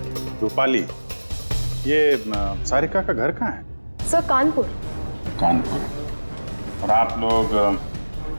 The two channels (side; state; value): both; inverted; correlation -1.00